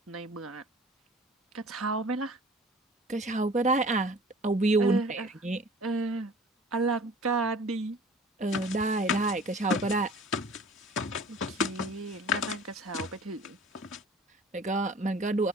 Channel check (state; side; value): normal; both; correlation 0.47